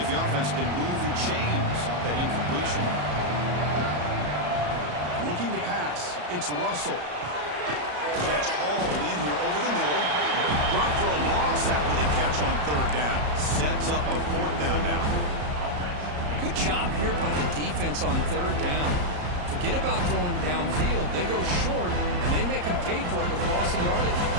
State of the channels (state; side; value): late; left; 34 ms